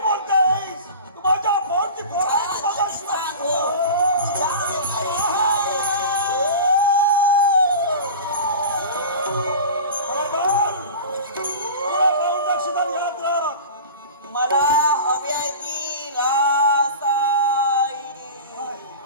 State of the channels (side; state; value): both; inverted; correlation -0.33